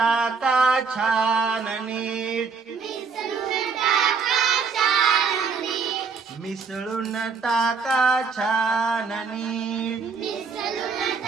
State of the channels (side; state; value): left; quieter; 5.3 dB